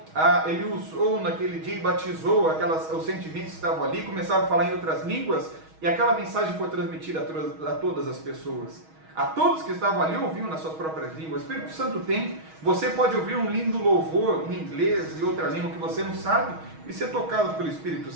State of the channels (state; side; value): late; left; 6.3 ms